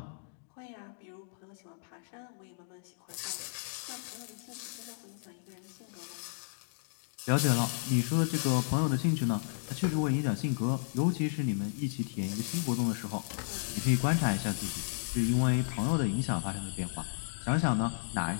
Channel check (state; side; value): silent; right; digital silence